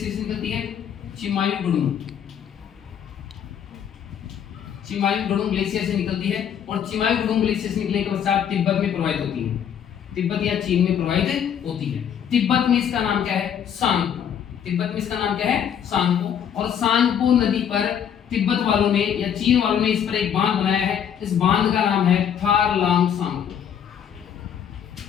से निकलती है? चिमायुगुडुंग ग्लेशियर से निकलती है और चिमायुगुडुंग ग्लेशियर से निकलने के पश्चात तिब्बत में प्रवाहित होती है। तिब्बत या चीन में प्रवाहित होती है। तिब्बत में इसका नाम क्या है? सांगपो। तिब्बत में इसका नाम क्या है? सांगपो। और सांगपो नदी पर तिब्बत वालों ने या चीन वालों ने इस पर एक बांध बनाया है। इस बांध का नाम है थारलांग सांगपो।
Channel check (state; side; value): quieter; right; 8.7 dB